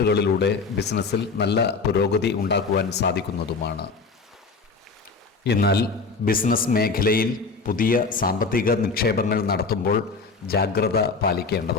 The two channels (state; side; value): quieter; right; 4.4 dB